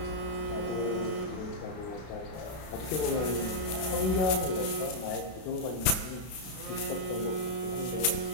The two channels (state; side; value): late; right; 32 ms